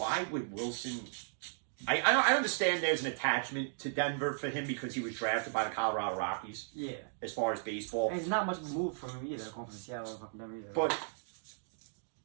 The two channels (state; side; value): silent; left; digital silence